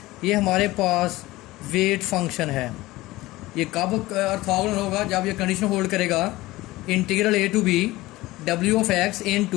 ये हमारे पास wait function है। ये कब ऑर्थोगोनल होगा? जब ये कंडीशन होल्ड करेगा integral a to b w of x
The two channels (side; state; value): right; quieter; 18.7 dB